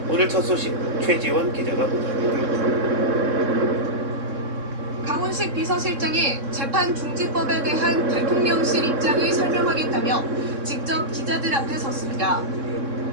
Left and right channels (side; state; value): left; late; 3.6 ms